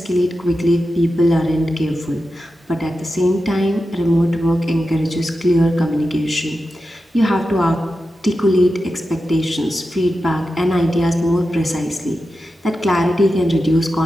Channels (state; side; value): normal; both; correlation 0.91